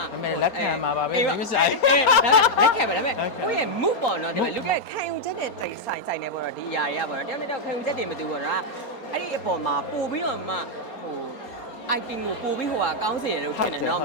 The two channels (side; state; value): right; late; 4.3 ms